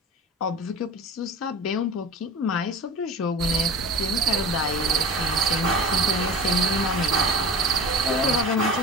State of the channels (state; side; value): normal; both; correlation 0.34